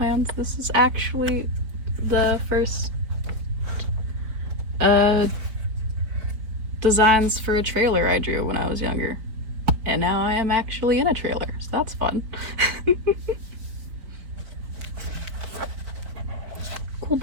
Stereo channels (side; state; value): left; late; 4.5 ms